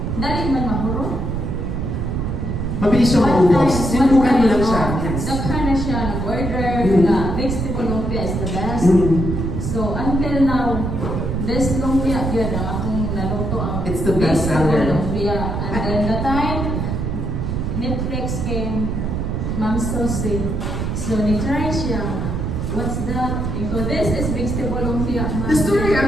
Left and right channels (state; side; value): noise; right; rumble, 2 dB below the sound